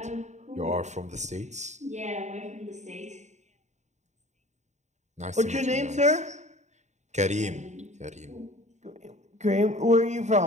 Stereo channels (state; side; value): late; left; 0.34 ms